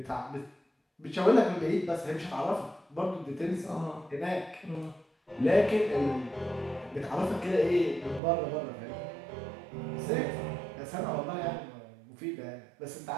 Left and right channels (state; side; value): drops out; left; at 8.2 s